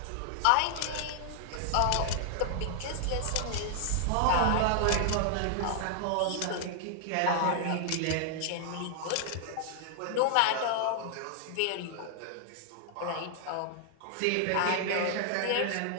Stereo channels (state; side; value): different; both; correlation 0.00